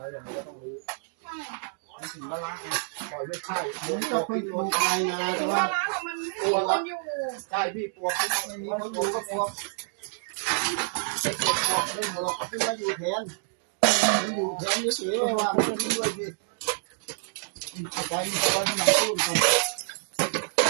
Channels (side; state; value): left; silent; digital silence